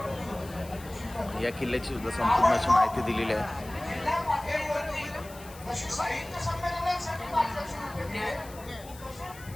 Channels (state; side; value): noise; left; hiss, 19 dB below the sound